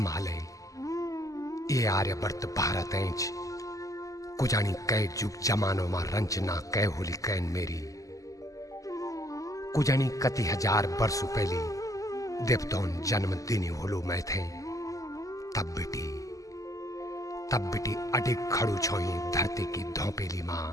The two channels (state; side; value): late; right; 0.16 ms